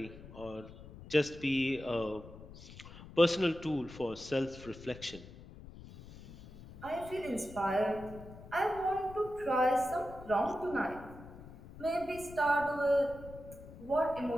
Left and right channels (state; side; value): noise; left; rumble, 16 dB below the sound